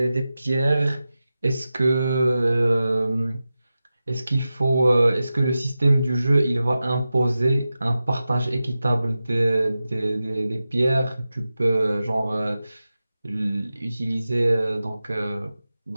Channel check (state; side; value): inverted; both; correlation -0.93